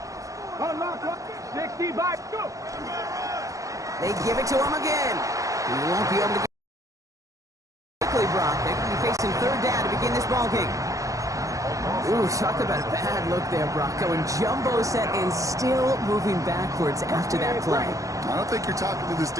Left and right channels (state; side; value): late; left; 0.16 ms